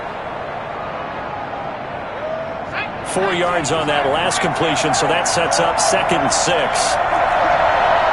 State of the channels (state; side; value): identical; both; correlation 1.00